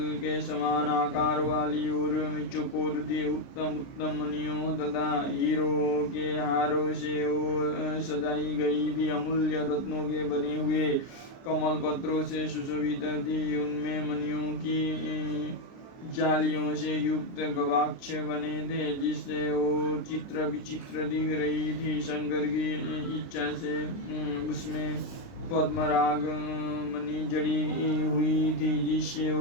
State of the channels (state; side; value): late; right; 29 ms